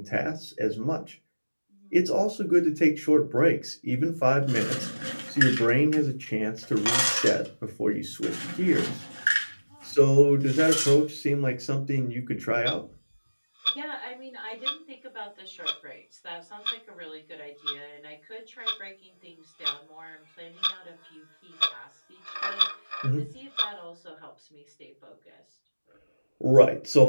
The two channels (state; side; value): inverted; both; correlation -1.00